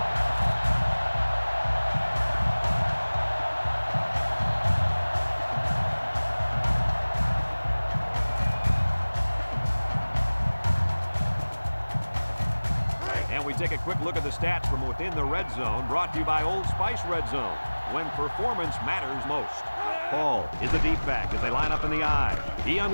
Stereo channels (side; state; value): both; inverted; correlation -1.00